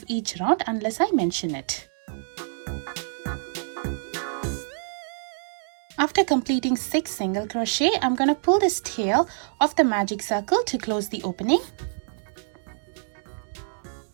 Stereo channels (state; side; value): silent; left; digital silence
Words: each round unless I mention it. After completing 6 single crochet, I'm going to pull this tail of the magic circle to close the opening.